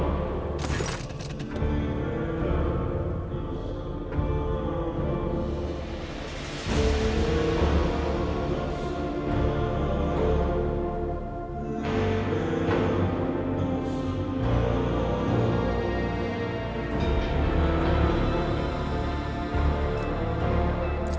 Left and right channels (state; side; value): identical; both; correlation 1.00